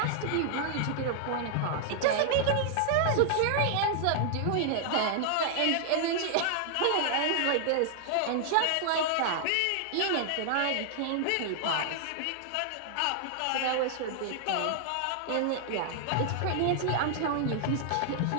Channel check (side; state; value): both; different; correlation 0.00